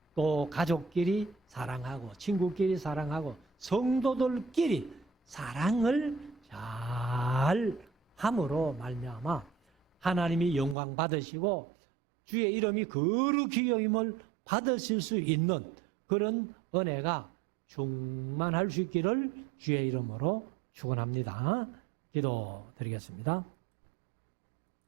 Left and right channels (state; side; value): drops out; left; at 10.8 s